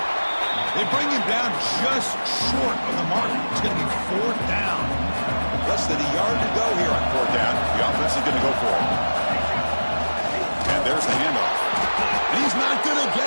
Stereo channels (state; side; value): inverted; both; correlation -1.00